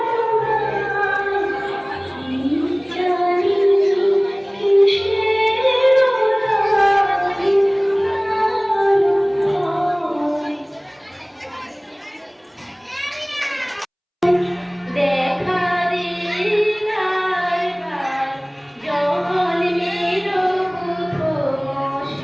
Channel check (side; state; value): both; identical; correlation 1.00